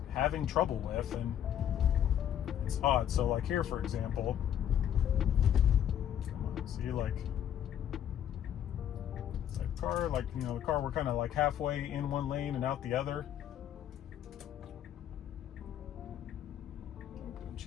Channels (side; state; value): right; quieter; 10.1 dB